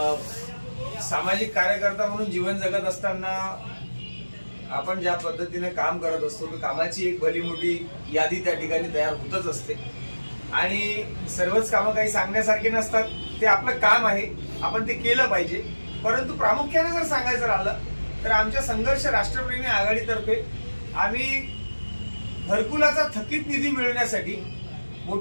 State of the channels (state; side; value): inverted; both; correlation -1.00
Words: सामाजिक कार्यकर्ता म्हणून जीवन जगत असताना आपण ज्या पद्धतीने काम करत असतो तर कामाची एक भली मोठी यादी त्या ठिकाणी तयार होतच असते आणि सर्वच कामं काही सांगण्यासारखी नसतात. ते आपलं काम आहे, आपण ते केलं पाहिजे. परंतु प्रामुख्याने जर सांगायचं राहिलं तर आमच्या संघर्ष राष्ट्रप्रेमी आघाडीतर्फे आम्ही घरकुलाचा थकीत निधी मिळवण्यासाठी